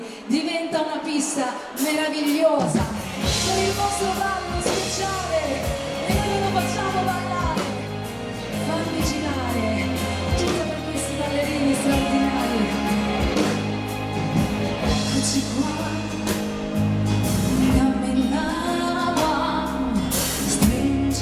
diventa una pista meravigliosa, con il vostro ballo speciale e noi ve lo facciamo ballare, fammi girare, tutta per questi ballerini straordinari, eccoci qua, dammi la mano,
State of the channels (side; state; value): both; identical; correlation 1.00